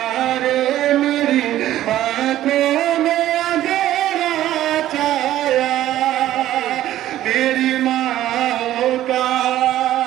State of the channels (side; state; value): left; quieter; 13.4 dB